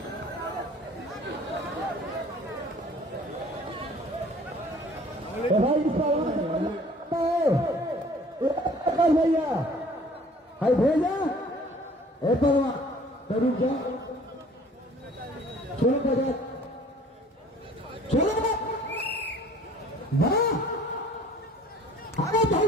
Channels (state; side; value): normal; both; correlation 0.52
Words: भाई भैया हाय भेजा ए परवा करूँ क्या चलो बजा चलो वाह, अरे